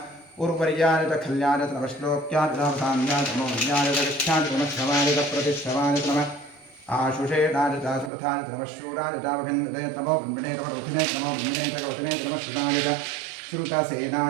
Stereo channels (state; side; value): drops out; left; at 8.1 s